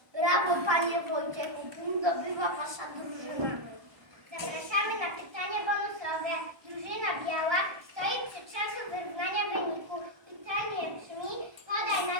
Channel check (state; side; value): late; left; 1.3 ms